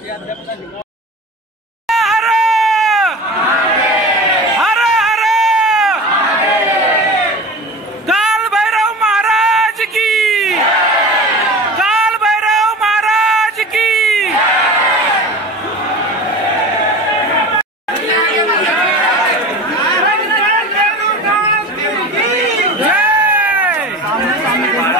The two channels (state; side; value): normal; both; correlation 0.34